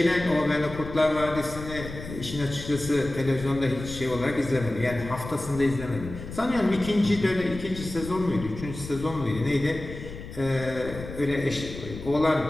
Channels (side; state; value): left; noise; rumble, 11 dB below the sound